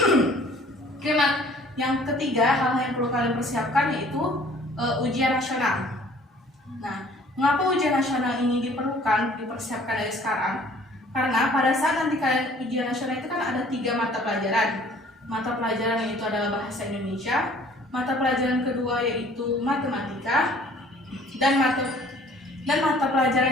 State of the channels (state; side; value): normal; both; correlation 0.54